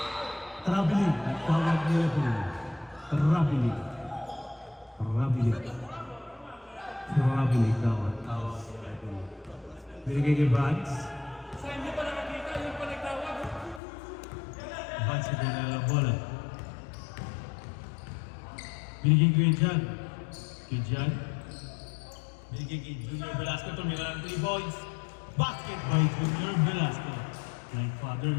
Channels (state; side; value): drops out; right; at 13.8 s